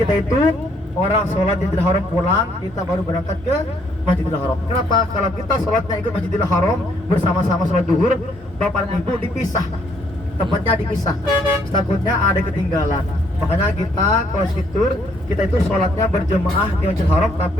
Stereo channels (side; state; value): both; normal; correlation 0.68